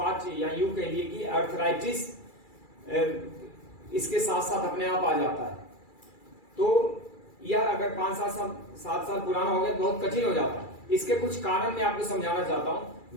या यूं कह लिए कि अर्थराइटिस इसके साथ साथ अपने आप आ जाता है। तो यह अगर 5-7 साल पुराना हो गया तो बहुत कठिन हो जाता है। इसके कुछ कारण मैं आपको समझाना चाहता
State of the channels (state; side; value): late; right; 2.3 ms